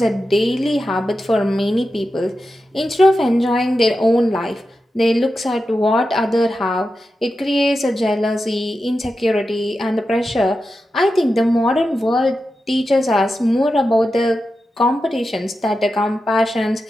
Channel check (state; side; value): normal; both; correlation 0.91